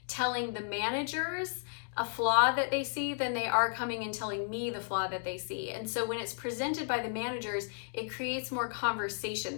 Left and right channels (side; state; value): right; silent; digital silence